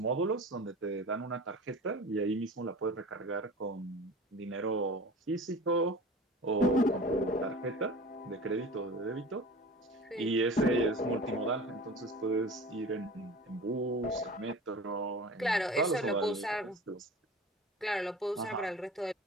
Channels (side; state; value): both; normal; correlation 0.37